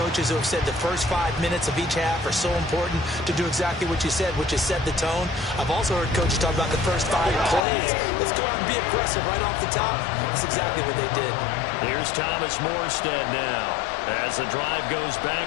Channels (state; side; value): drops out; right; at 7.7 s